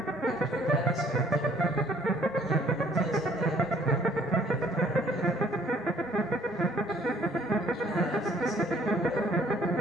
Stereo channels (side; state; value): both; normal; correlation 0.59